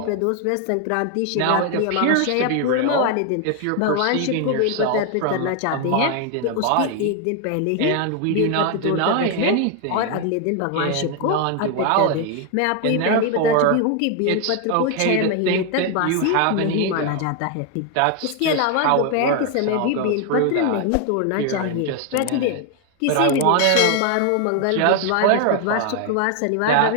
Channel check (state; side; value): different; both; correlation 0.01